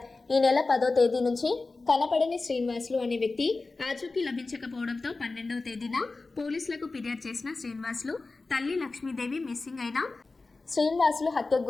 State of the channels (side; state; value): right; quieter; 3.6 dB